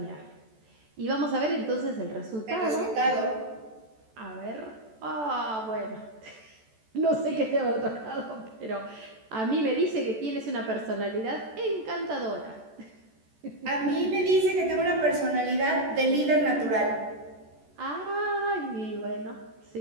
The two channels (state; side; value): late; left; 14 ms